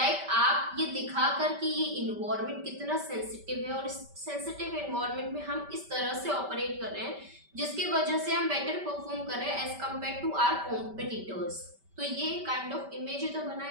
ये दिखाकर कि ये इन्वायरमेंट कितना सेंसिटिव है और इस सेंसिटिव इन्वायरमेंट में हम इस तरह से ऑपरेट कर रहे हैं जिसकी वजह से हम बेटर परफॉर्म कर रहे हैं as compare to our competitors. तो ये काइंड ऑफ इमेज ही तो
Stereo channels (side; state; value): left; late; 5.1 ms